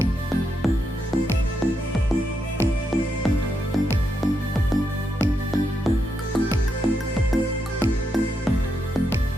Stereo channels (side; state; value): both; normal; correlation 0.82